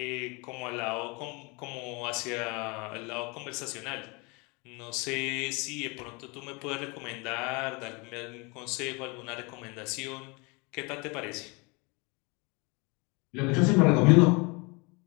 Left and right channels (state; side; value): quieter; right; 28.9 dB